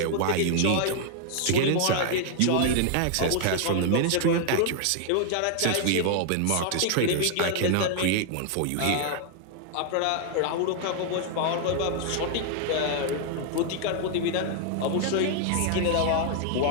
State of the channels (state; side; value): different; both; correlation 0.00